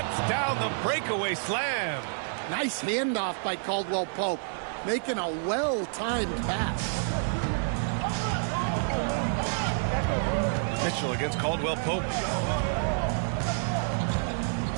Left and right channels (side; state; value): left; silent; 59 dB below the other